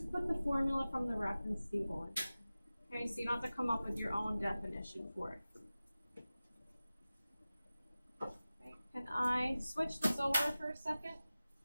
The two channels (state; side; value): inverted; both; correlation -0.96